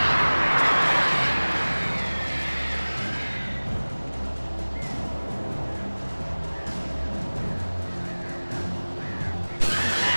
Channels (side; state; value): both; inverted; correlation -1.00